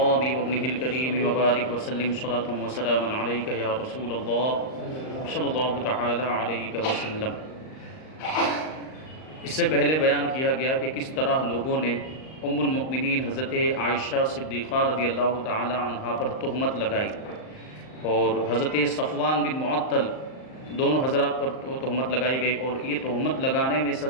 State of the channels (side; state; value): right; late; 38 ms